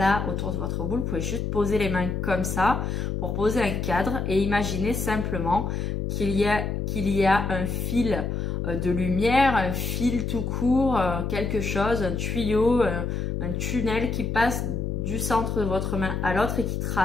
autour de votre boule. Vous pouvez juste poser les mains comme ça pour poser un cadre et imaginer simplement qu'il y a un fil de lumière, un fil tout court, quelque chose, un tuyau, un tunnel qui passe du centre de votre main à l'autre et qui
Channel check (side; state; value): left; noise; hum, 2 dB below the sound